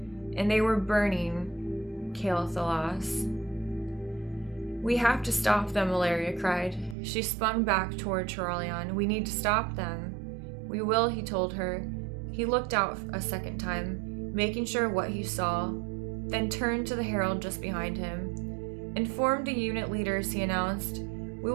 and they were burning aLilFoxz. "We have to stop them," Ilaria cried. She spun back toward Turalian. "We need to stop them." "We will," he told her. He looked out a second time, making sure what he saw, then turned to the herald just behind him. "Inform the unit leaders," he announced. "We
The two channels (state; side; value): drops out; left; at 7.0 s